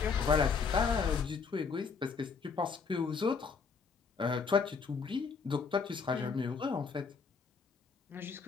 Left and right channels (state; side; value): quieter; right; 5.3 dB